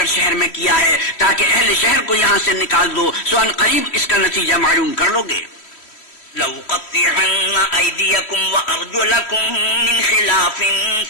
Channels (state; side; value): late; right; 3.1 ms